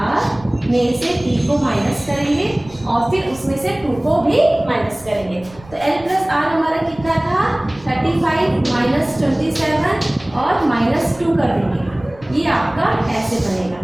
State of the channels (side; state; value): right; noise; rumble, 22 dB below the sound